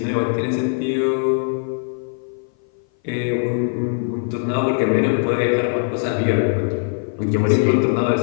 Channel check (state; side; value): silent; right; 58 dB below the other